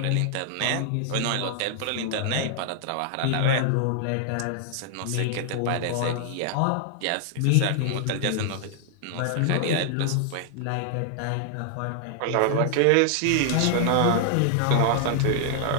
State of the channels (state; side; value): different; both; correlation 0.00